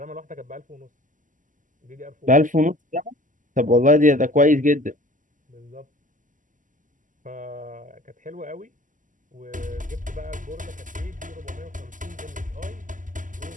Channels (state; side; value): late; left; 0.38 ms